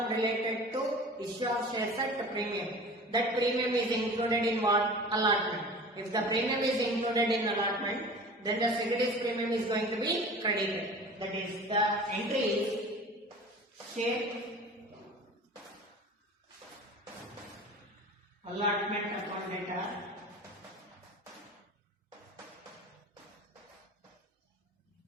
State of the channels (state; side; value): normal; both; correlation 0.39